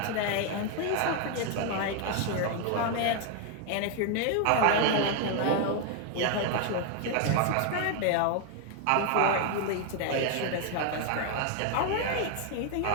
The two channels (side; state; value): both; different; correlation 0.01